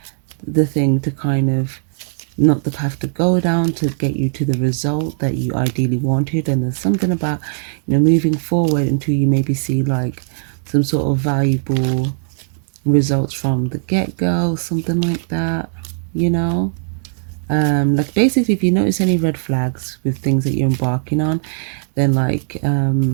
the thing to kind of, not the path to go down to get you to the result that you ideally wanted. And there's something about, you know, moving forward until you maybe see like some sort of valuable results from the get-go, something like that, you know. Like basically, if you notice any red flags with things that you're embarking on, then like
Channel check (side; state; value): left; silent; digital silence